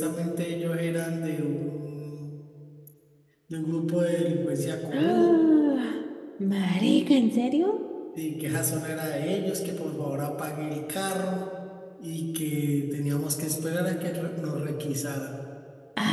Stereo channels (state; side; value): identical; both; correlation 1.00